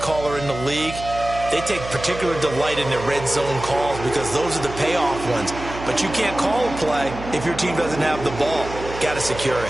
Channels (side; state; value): right; noise; hum, 11 dB below the sound